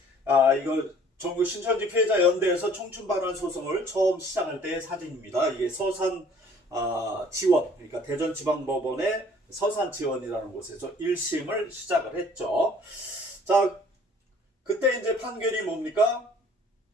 이거 전국 신천지 피해자 연대에서 청춘반환 소송을 처음 시작할 때의 사진입니다. 이게 서산 지원, 그러니까 대전지방법원의 서산 지원이라는 곳에서 1심을 시작을 했죠. 자, 그때 이제 판결이 뭡니까?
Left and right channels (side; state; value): both; normal; correlation 0.55